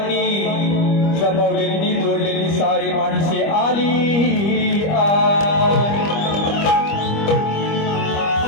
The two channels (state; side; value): late; right; 25 ms